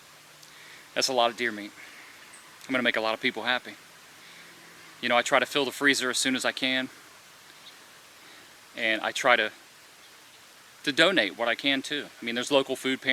That's a lot of deer meat. I'm gonna make a lot of people happy. You know, I try to fill the freezer as soon as I can. And I try to donate what I can too. I mean, there's local food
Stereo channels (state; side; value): identical; both; correlation 1.00